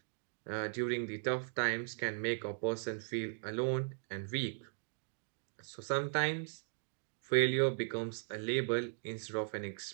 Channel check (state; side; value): silent; left; digital silence